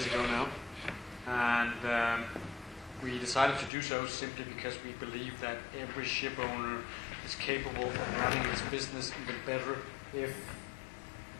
ago now, and we decided to do so simply because we believe that every ship owner is capable of running its business even better if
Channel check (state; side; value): drops out; right; at 3.7 s